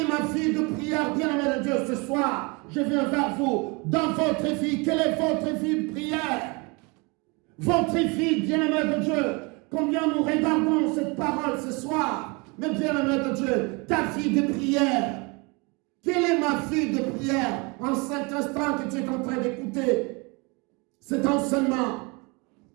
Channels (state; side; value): quieter; left; 29.0 dB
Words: ma vie de prière, bien-aimé de Dieu, ce soir? Je viens vers vous. Dans votre vie, quelle est votre vie de prière? Votre vie, bien-aimé de Dieu, combien nous regardons cette parole ce soir? Mais bien-aimé de Dieu, ta vie de prière. Quelle est ma vie de prière en cet instant que tu es en train d'écouter cet enseignement?